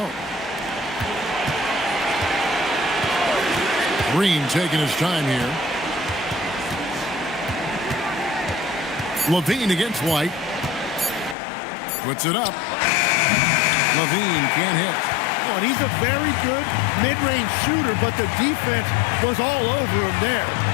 Green taking his time here. Levine against White. Puts it up. Levine can't hit. Oh, and he's a very good mid-range shooter, but the defense was all over him there,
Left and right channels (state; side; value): drops out; right; at 11.4 s